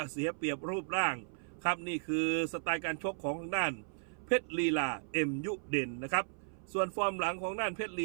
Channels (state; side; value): silent; left; 54 dB below the other